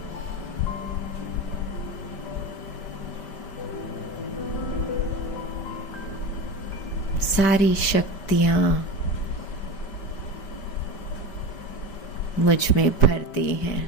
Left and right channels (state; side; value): late; right; 5.1 ms